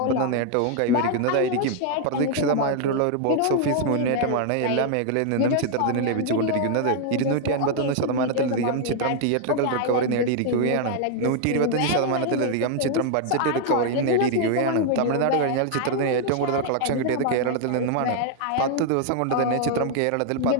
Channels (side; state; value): both; different; correlation 0.00